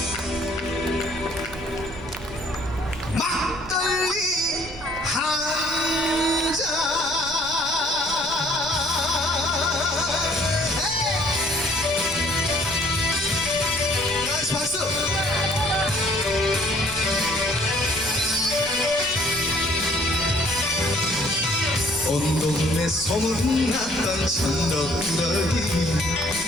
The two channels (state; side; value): noise; right; rumble, 15 dB below the sound